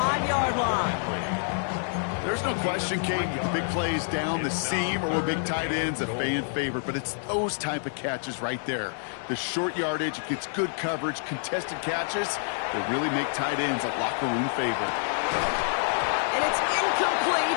line. There's no question, Kate, the big plays down the seam or with big tight ends, a fan favorite, but it's those type of catches right there. The short yardage, it gets good coverage, contested catches that really make tight ends a locker room favorite. And it's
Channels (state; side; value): silent; right; digital silence